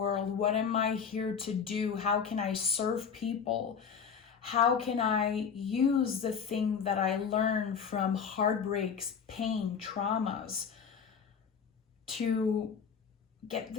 What am I here to do? How can I serve people? How can I use the thing that I learned from heartbreaks, pain, traumas to get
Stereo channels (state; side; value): quieter; right; 6.6 dB